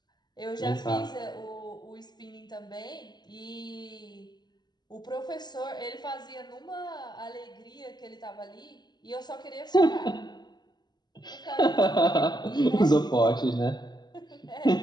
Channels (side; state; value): right; late; 0.21 ms